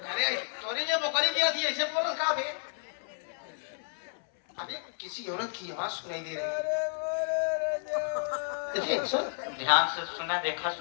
अरे तोरी ये बकरी दिया थी, ऐसे बोल कहा बे? अबे किसी औरत की आवाज सुनाई दे रही है। देखिए सुन, ध्यान से सुना, देखा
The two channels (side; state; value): right; silent; 57 dB below the other